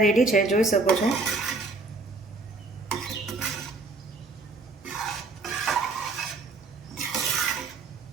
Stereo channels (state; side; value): quieter; left; 3.7 dB